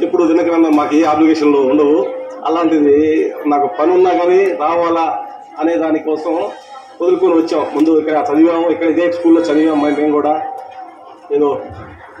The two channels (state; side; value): identical; both; correlation 1.00